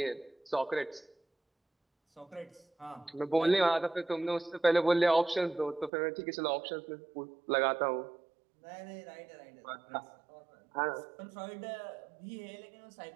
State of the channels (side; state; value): left; drops out; at 5.9 s